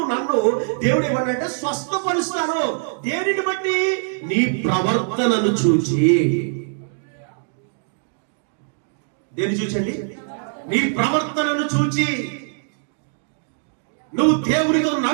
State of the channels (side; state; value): left; silent; digital silence